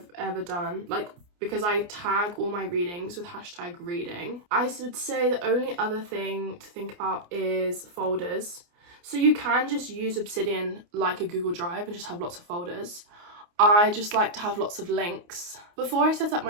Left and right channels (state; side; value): late; left; 29 ms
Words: ever done, like because I tag all my readings with hashtag reading. I would say the only other thing to think about is folders. So you can just use Obsidian like a Google Drive and just have lots of folders. I just like to have lots of links. Before I set up